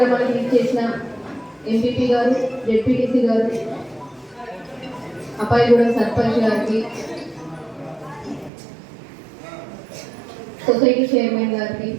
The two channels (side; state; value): left; drops out; at 8.5 s